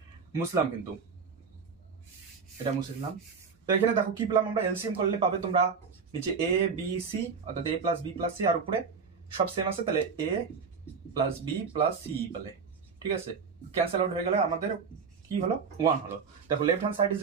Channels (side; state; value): left; quieter; 5.6 dB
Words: মুসলাম, কিন্তু এটা মুসলাম। তো এখানে দেখো কি পেলাম আমরা, এলসিএম করলে পাবে তোমরা নিচে এ বি সি, অর্থাৎ এ প্লাস বি প্লাস সি, আর উপরে সব সেম আছে, তাহলে এ প্লাস বি প্লাস সি বলে। ঠিক আছে, ক্যান্সেল আউট হয়ে গেলে আমাদের কি হলো, 1 হলো। দেখো left hand side is